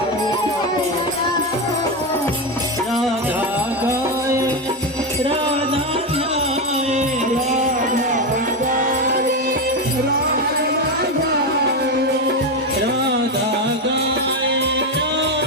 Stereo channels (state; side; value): normal; both; correlation 0.12